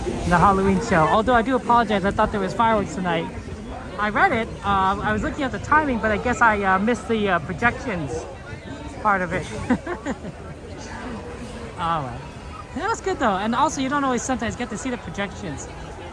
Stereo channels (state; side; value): identical; both; correlation 1.00